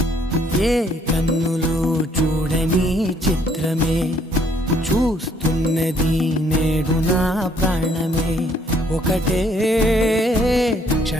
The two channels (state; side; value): normal; both; correlation 0.66